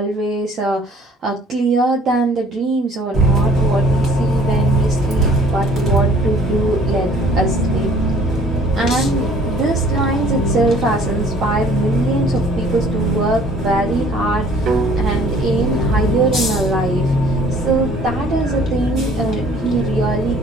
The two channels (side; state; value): both; normal; correlation 0.55